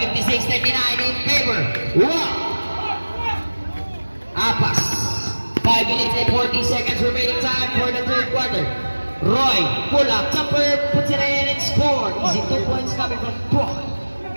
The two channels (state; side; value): inverted; both; correlation -1.00